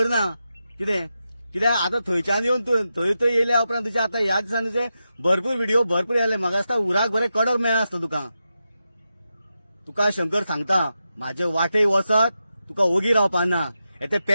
ना. कितें कित्याक आतां थंयच्यान येवन थंय येयल्या उपरांत तुजे आतां ह्या दिसांनी तुजे भरपूर व्हिडिओ भरपूर येयले. म्हाका दिसता उराक बरें कडक मेळ्ळा आसता तुका शंकर सांगता, म्हाजे वाटेक वचत तुका ओगी रावपा ना. ते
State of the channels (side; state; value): both; inverted; correlation -0.89